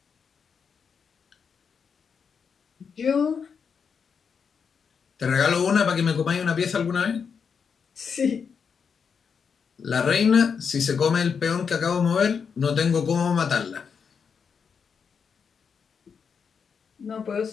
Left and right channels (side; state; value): right; quieter; 6.3 dB